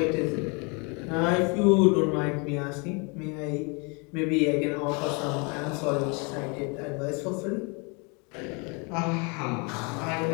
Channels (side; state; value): right; quieter; 32.1 dB